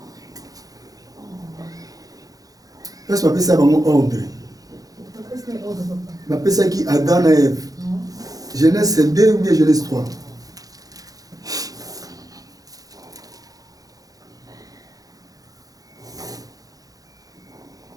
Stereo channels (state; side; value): late; left; 0.17 ms